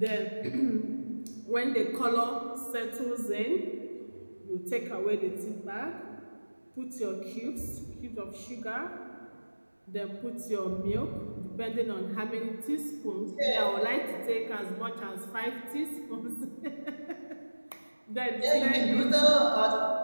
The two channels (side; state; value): both; inverted; correlation -1.00